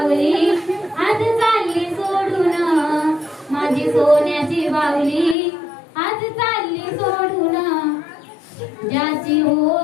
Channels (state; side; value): drops out; right; at 5.4 s